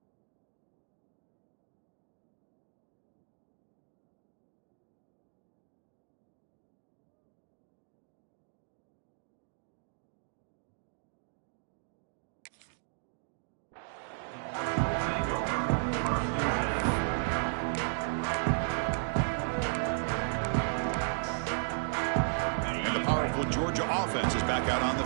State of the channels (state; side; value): silent; left; digital silence